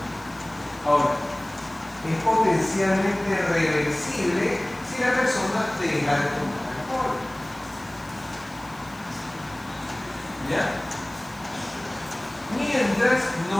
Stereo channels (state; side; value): noise; left; hiss, 24 dB below the sound